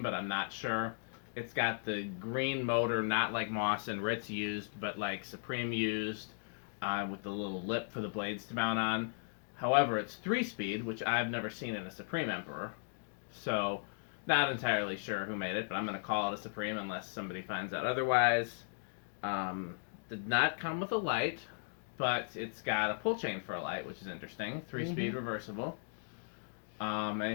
but I'm not sure. It's got the green motor, not like Moss and Ritz used, but like Supreme used, with the little lip for the blades to mount on. However, it's 3-speed, which I've never seen in a Supreme Emperor. So, not entirely sure who made it, but I'm going to call it a Supreme unless somebody finds out otherwise. Did not come with a light, but it's got a pull chain for a light, which is interesting. 3-speed reversible.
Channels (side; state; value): right; silent; digital silence